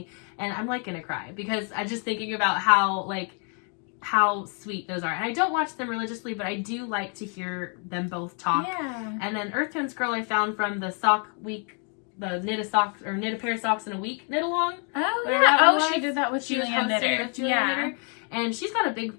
and I'm like gonna cry because I'm just thinking about how sweet those are. And I don't watch them religiously, but I do like to hear them both talk. Yeah. And then Earth Tones Girl I found from the sock week, the knit a pair of socks in a week knit-along. Oh yeah. Oh, she did that with Julianne Knitter. Knitter. And she's got a big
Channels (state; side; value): quieter; right; 39.9 dB